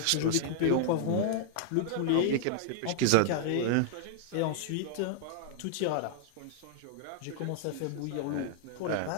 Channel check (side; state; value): both; different; correlation 0.00